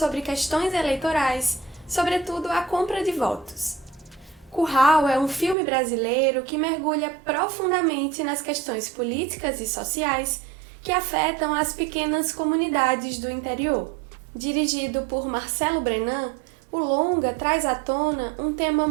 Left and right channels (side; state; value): left; drops out; at 5.6 s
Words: questões eleitorais, sobretudo a compra de votos. Curral é um filme brasileiro que mergulha profundamente nas questões políticas e sociais que afetam as pequenas comunidades do interior. Dirigido por Marcelo Brenan, o longa traz à tona um tema